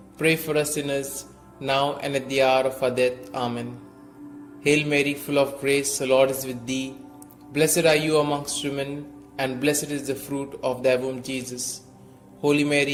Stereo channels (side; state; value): both; identical; correlation 1.00